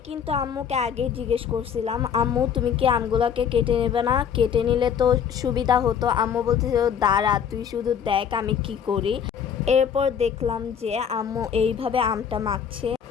কিন্তু আম্মুকে আগে জিজ্ঞেস করছিলাম, আম্মু তুমি কি আমগুলোকে কেটে নেবে না? কেটে নিলে তো সুবিধা হতো। আম্মু বলতেছিল দাঁড়া, তুই শুধু দেখ আমি কি করি। এরপর দেখলাম যে আম্মু এইভাবে আমটা মাখছে।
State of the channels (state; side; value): quieter; right; 7.8 dB